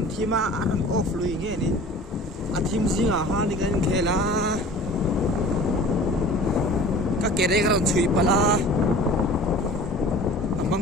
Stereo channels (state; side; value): normal; both; correlation 0.43